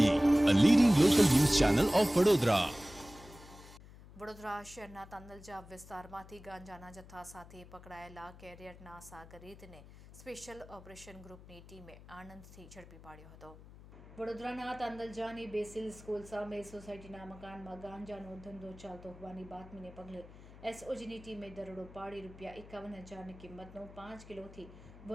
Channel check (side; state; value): left; noise; hum, 19 dB below the sound